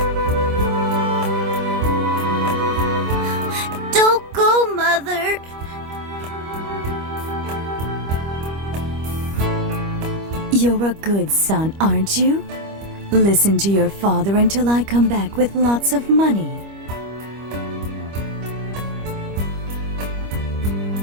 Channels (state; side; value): late; left; 25 ms